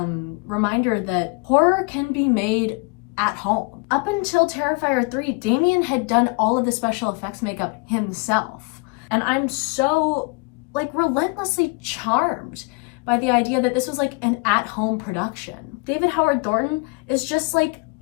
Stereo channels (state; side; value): quieter; right; 30.2 dB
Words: reminder that horror can be made at home. Up until Terrifier 3, Damien had done all of the special effects makeup himself. And I'm so like relentlessly charmed by the idea that this was like an at-home production. David Howard Thornton is just like